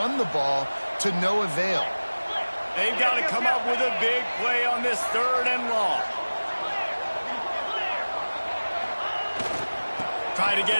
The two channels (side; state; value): both; inverted; correlation -1.00